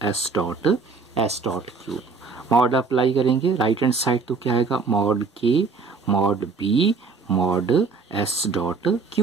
S dot q. Mod apply करेंगे राइट हैंड साइड तो क्या आएगा, mod K mod B mod S dot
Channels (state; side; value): quieter; left; 4.6 dB